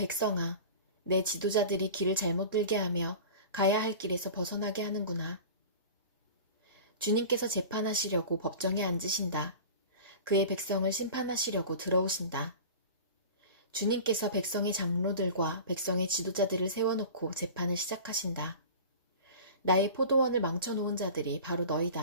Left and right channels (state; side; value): inverted; both; correlation -0.36